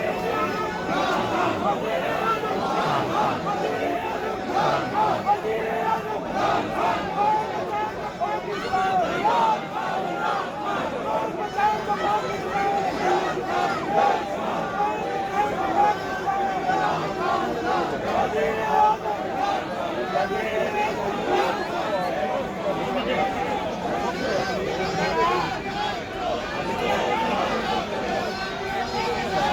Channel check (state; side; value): identical; both; correlation 1.00